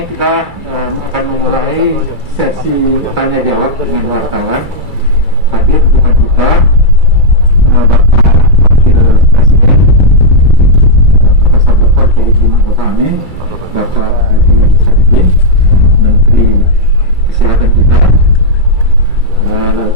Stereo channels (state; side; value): late; left; 2.3 ms